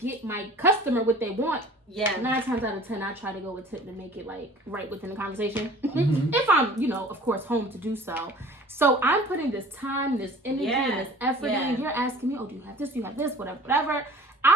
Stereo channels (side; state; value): both; normal; correlation 0.47